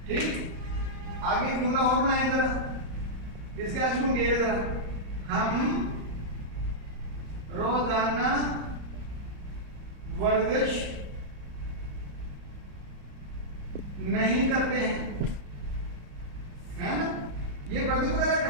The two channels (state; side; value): late; left; 34 ms